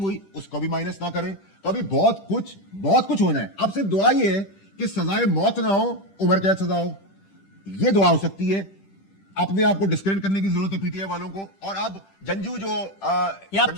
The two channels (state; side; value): late; right; 10 ms